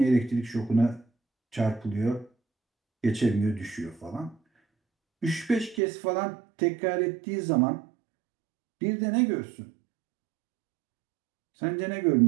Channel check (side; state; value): left; drops out; at 5.8 s